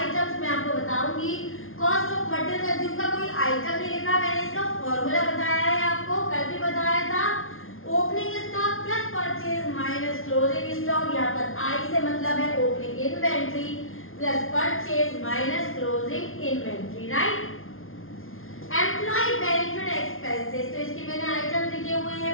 मैं आपको बताऊंगी। कॉस्ट ऑफ मटेरियल कंज्यूम का कोई आइटम नहीं लिखा, मैंने इसका फॉर्मूला बताया है आपको, कल भी बताया था। Opening stock plus purchase minus closing stock, यहाँ पर आई से मतलब है opening inventory plus purchase minus closing inventory, right. Employee benefit expenses, तो इसके मैंने आइटम लिखे हुए हैं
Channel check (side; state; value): right; late; 0.60 ms